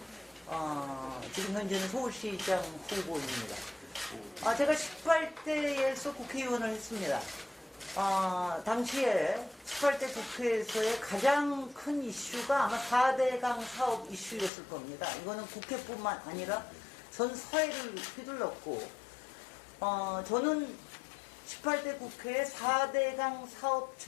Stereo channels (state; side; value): drops out; right; at 14.5 s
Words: 지금 현재는 서울시장 후보입니다. 제가 18대에서 국회의원을 했습니다. 당시에 18대 국회에서의 가장 큰 이슈가 아마 4대강 사업 이슈였을 겁니다. 이거는 국회뿐만 아니라 전 사회를 휘둘렀고, 저는 18대 국회의 4대강 사업